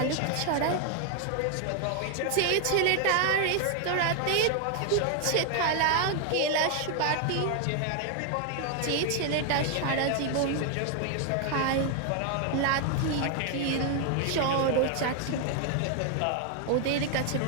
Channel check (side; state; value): both; different; correlation 0.00